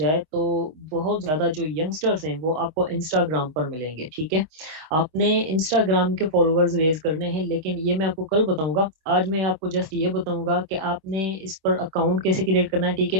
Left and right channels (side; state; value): left; late; 26 ms